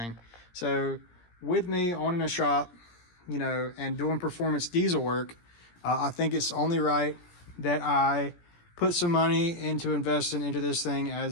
So with me owning a shop, and doing performance diesel work, I think it's only right that I put some money into investing into this thing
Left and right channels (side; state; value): right; late; 17 ms